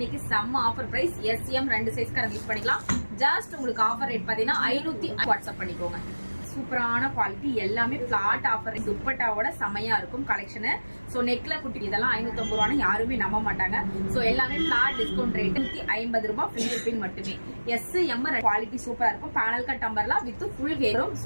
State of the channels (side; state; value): both; inverted; correlation -1.00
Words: செம்ம ஆஃபர் பிரைஸ். எஸ்எம் 2 சைஸ்க்காரங்க யூஸ் பண்ணிக்கலாம். ஜஸ்ட் உங்களுக்கு ஆஃபர் ரேட் பாத்தீங்கன்னா 500 வாட்ஸ்அப் பண்ணிக்கோங்க. சூப்பரான குவாலிட்டி, எல்லாமே பிளாட் ஆஃபர். துப்பட்டாவோட செமையா இருக்கும் கலெக்ஷன். சோ நெக்ல குட்டி இதெல்லாம் 550 ரூபான்னு யாருமே நம்ப மாட்டாங்க. சோ எல்லாமே பிளாட் டிஸ்கவுண்ட் ரேட் 150 ரூபாய், ஃப்ரீ ஷிப்பிங் மட்டுமே. எஸ் எம் குவாலிட்டி சூப்பரா இருக்கும். Panel cut umbrella with full ஹேரும்